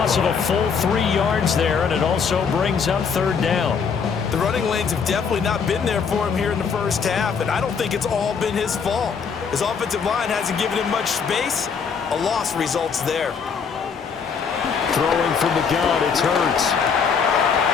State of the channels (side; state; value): right; quieter; 6.1 dB